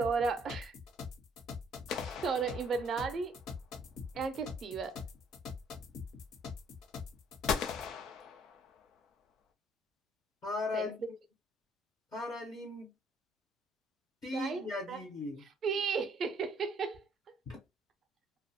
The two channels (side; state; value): both; normal; correlation 0.63